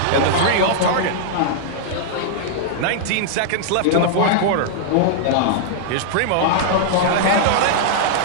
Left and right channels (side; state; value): both; different; correlation -0.02